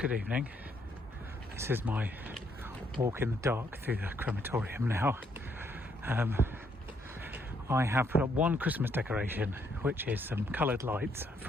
evening. This is my walk in the dark through the crematorium now. I have put up one Christmas decoration, which is some coloured lights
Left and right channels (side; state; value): both; normal; correlation 0.72